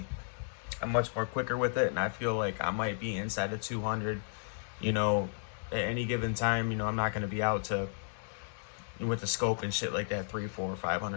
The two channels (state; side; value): silent; right; digital silence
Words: I'm much more quicker with it, and I feel like I might be inside of 200, at any given time. I'm not going to be out to, with the scope and shit like that, 300, 400,